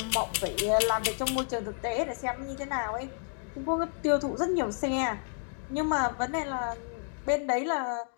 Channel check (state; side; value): silent; right; 57 dB below the other